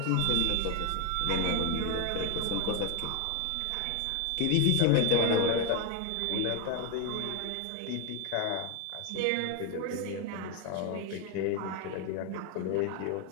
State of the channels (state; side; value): different; both; correlation 0.01